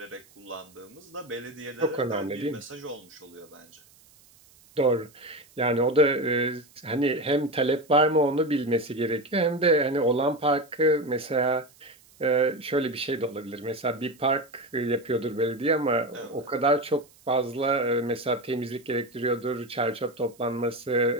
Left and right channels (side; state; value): right; noise; hiss, 28 dB below the sound